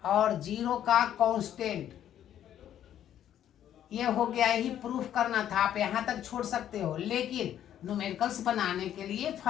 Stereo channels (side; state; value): right; quieter; 10.8 dB